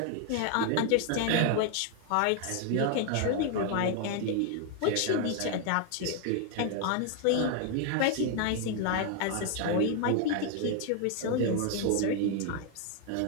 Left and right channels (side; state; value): both; different; correlation 0.00